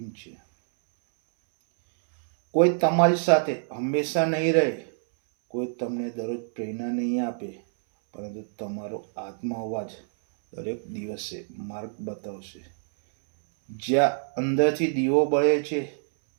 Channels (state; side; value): silent; left; 61 dB below the other